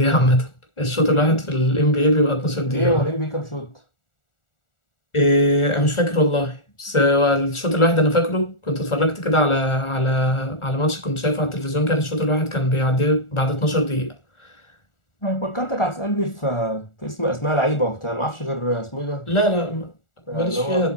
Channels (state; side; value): late; right; 1.4 ms